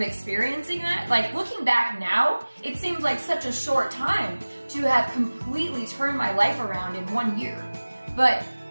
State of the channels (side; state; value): both; inverted; correlation -1.00